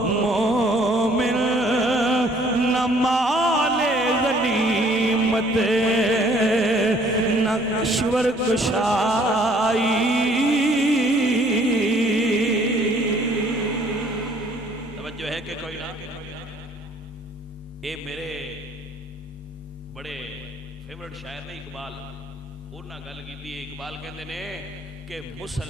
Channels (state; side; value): normal; both; correlation 0.60